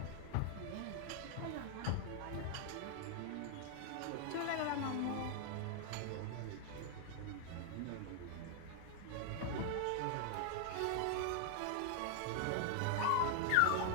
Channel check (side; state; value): both; different; correlation 0.00